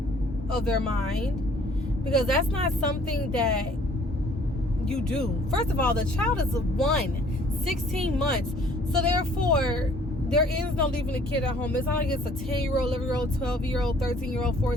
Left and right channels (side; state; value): both; normal; correlation 0.57